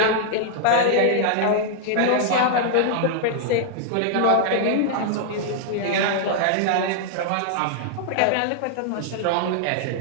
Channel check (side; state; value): both; different; correlation -0.01